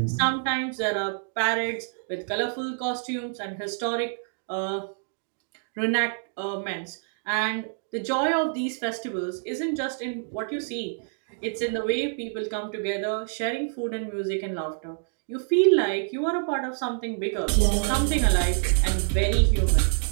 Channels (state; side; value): silent; left; digital silence